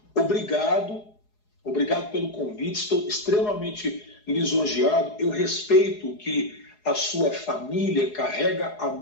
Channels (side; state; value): right; late; 4.8 ms